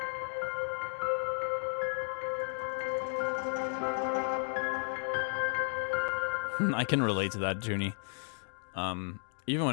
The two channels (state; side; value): silent; right; digital silence